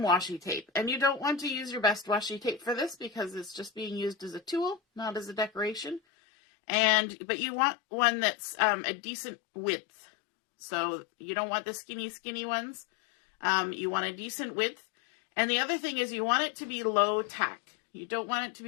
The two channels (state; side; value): drops out; right; at 6.0 s